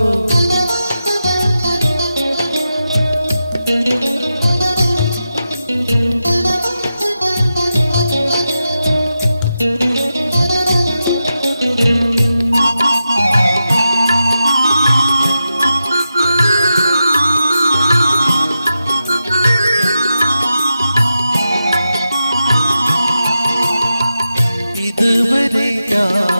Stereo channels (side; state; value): both; inverted; correlation -0.90